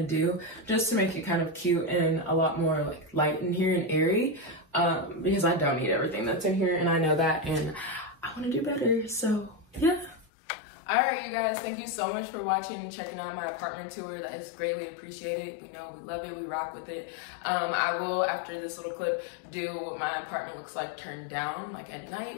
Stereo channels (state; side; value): drops out; right; at 10.2 s